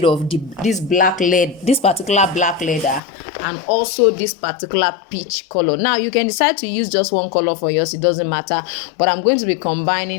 of this particular black leather and also this particular peach color. Now you can decide to use just one color for yours, it doesn't matter, but I'm going to be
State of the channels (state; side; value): drops out; right; at 3.0 s